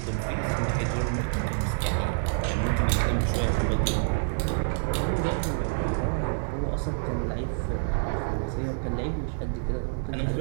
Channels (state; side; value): silent; left; digital silence